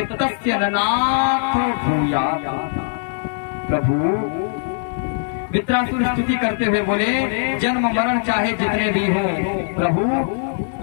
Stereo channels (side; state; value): right; silent; 65 dB below the other